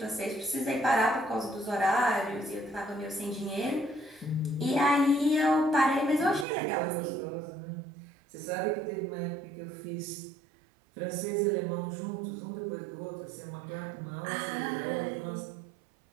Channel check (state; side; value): drops out; left; at 6.5 s